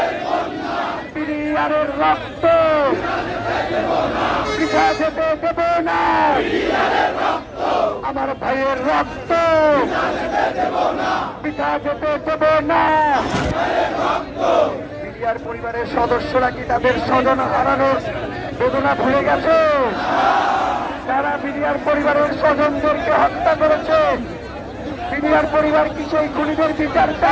বিডিআরের রক্ত পিছা যেতে দেব না, আমার ভাইয়ের রক্ত পিছা যেতে দেব না। বিডিআর পরিবারের সদস্যরা কি তাদের স্বজন হারানোর বেদনা ভুলে গেছে? তারা বিডিআর পরিবারের স্বজনদেরকে হত্যা করেছে। বিডিআর পরিবার কি সেই খুনিদের বিচার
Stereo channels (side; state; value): both; identical; correlation 1.00